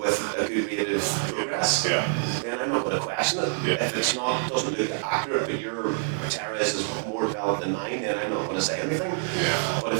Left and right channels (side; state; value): left; silent; digital silence